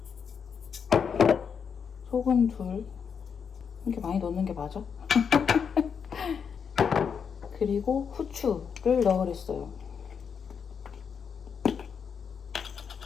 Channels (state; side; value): quieter; right; 6.7 dB